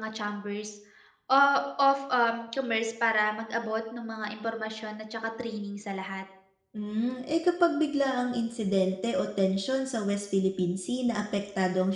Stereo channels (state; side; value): identical; both; correlation 1.00